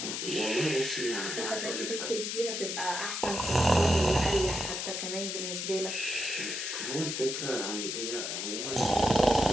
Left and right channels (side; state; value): left; noise; hiss, 3 dB below the sound